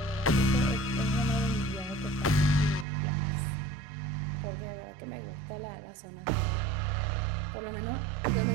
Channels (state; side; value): drops out; left; at 2.9 s